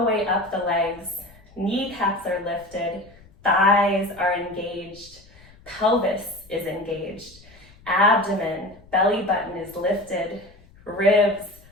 way up the legs. Kneecaps are lifted, thighs are engaged, pelvis is engaged, abdomen, belly button is lifted, ribs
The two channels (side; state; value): left; noise; rumble, 25 dB below the sound